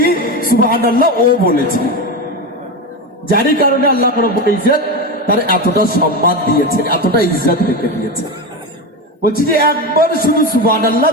সুবহানাল্লাহ ও বলেছে, যারই কারণে আল্লাহ রাব্বুল ইজ্জত তার এতটা সম্মান দিয়েছে, এতটা ইজ্জত রেখে দিয়েছে। বলছি যে একবার শুধু সুবহানাল্লাহ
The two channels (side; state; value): both; normal; correlation 0.18